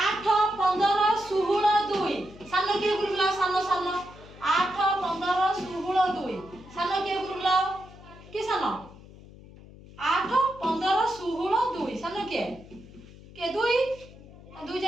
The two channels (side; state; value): left; noise; hum, 19 dB below the sound